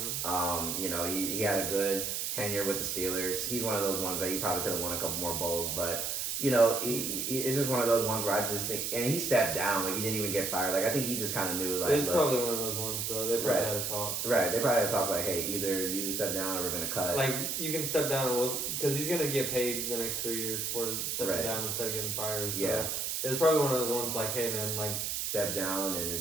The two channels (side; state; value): right; noise; hiss, 1 dB below the sound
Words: He had a good tenure with the Steelers. He's one of those ones that he probably could have won a couple more bowls, but it's just one of those ones where I just think, and he stepped down, he didn't even get fired. I think he just kind of knew, it's probably one of those ones, though. They probably had to talk. Right, they probably had to talk hey, either you step down or we're gonna cut. You can step down, because he's gonna get paid the next 3 years for stepping down instead of getting fired. So yeah, it was probably one of those ones hey man, step down and